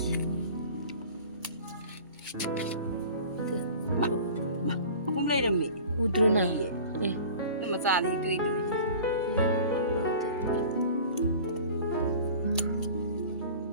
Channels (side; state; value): both; inverted; correlation -0.42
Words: không lấy được mẹ udruna nhưng mà già thì tùy tùy